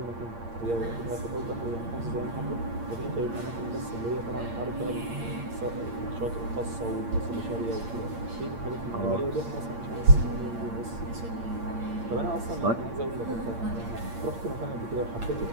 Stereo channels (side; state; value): left; late; 8.7 ms